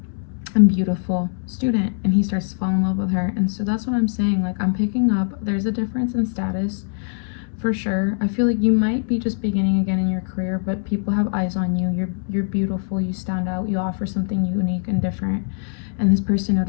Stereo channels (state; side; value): silent; right; digital silence